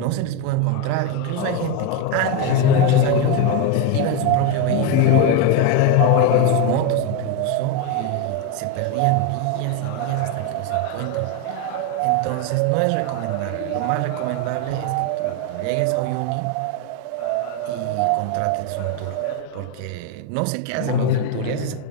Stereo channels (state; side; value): different; both; correlation 0.03